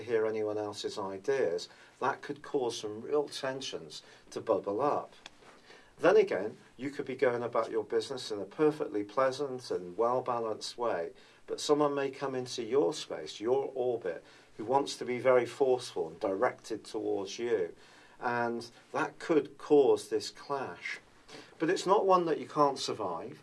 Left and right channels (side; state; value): both; identical; correlation 1.00